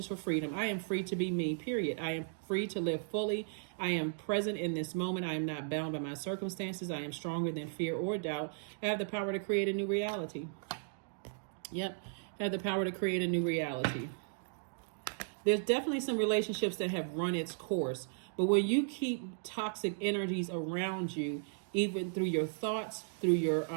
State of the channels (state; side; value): silent; left; digital silence